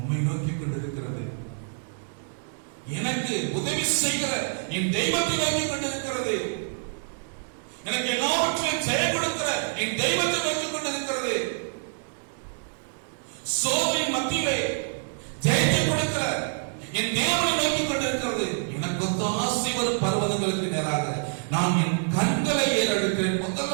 நோக்கி கொண்டிருக்கிறது. எனக்கு உதவி செய்கிற என் தெய்வத்தை நோக்கி கொண்டிருக்கிறது. எனக்கு எல்லாவற்றையும் ஜெயம் கொடுக்கிற என் தெய்வத்தை நோக்கி கொண்டிருக்கிறது. சோதனை மத்தியிலே ஜெயத்தை கொடுக்கிற என் தேவனை நோக்கி கொண்டிருக்கிறது. எனக்கு ஒத்தாசை வரும் பர்வதங்களுக்கு நேராக நான் என் கண்களை ஏறெடுக்கிறேன்.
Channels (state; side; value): silent; left; digital silence